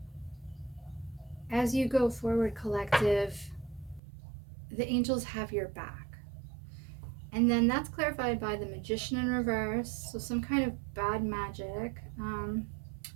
as you go forward, collective, the angels have your back. And then that's clarified by the Magician in reverse, so some kind of bad magic,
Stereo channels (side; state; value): left; drops out; at 4.0 s